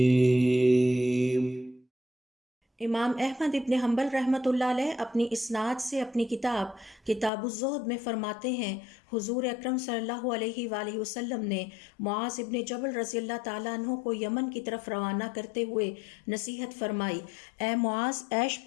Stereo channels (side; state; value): right; drops out; at 7.3 s